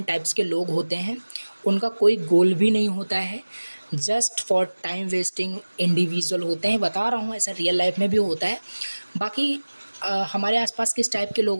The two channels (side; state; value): both; inverted; correlation -1.00